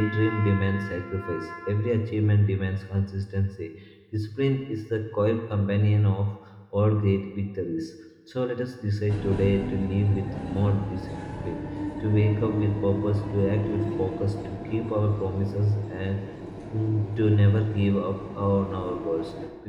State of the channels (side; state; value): both; identical; correlation 1.00